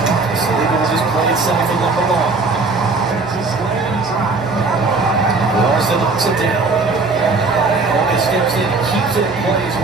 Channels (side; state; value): left; quieter; 3.9 dB